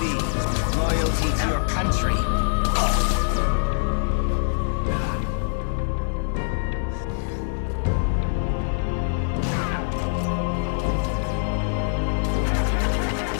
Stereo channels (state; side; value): silent; right; digital silence